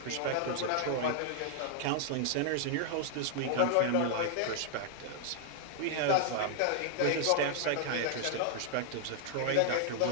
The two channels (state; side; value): different; both; correlation 0.00